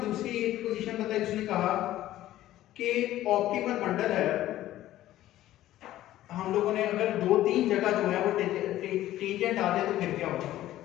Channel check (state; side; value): quieter; right; 14.2 dB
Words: दूसरी एक पोजीशन बताई, उसने कहा कि ऑप्टिमल बंडल है, हम लोगों ने अगर 2-3 जगह जो है वो टेंजेंट आ जाए तो फिर क्या होगा,